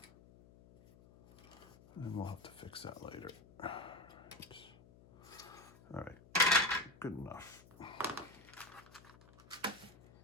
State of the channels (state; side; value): noise; left; hum, 22 dB below the sound